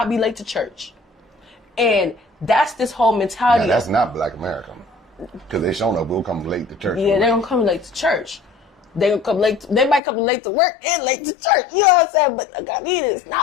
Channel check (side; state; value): right; drops out; at 10.0 s